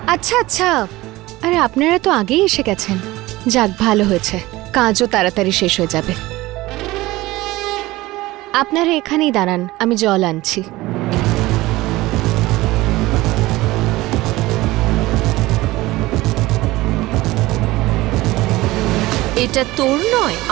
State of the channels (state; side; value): quieter; left; 18.8 dB